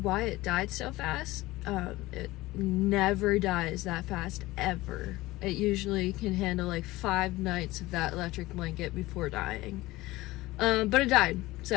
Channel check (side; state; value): right; quieter; 19.0 dB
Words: it died so fast. It never dies that fast, ever. It usually can handle like 5 nights of that electric blanket before dying. But it died,